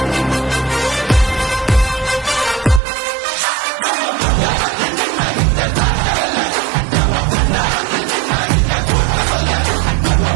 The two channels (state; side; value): drops out; left; at 2.8 s